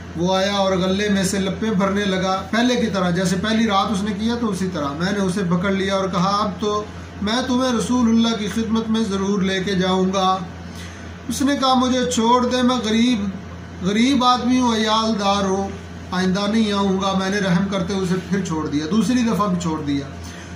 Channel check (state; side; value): identical; both; correlation 1.00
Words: وہ آیا اور غلے میں سے لپیں بھرنے لگا، پہلے کی طرح، جیسے پہلی رات اس نے کیا تو اسی طرح۔ میں نے اسے پکڑ لیا اور کہا اب تو میں تمہیں رسول اللہ کی خدمت میں ضرور لے کے جاؤں گا۔ اس نے کہا مجھے چھوڑ دے، میں غریب آدمی ہوں، عیال دار ہوں، آئندہ نہیں آؤں گا۔ میں نے رحم کرتے اسے پھر چھوڑ دیا، دوسری دفعہ بھی چھوڑ دیا۔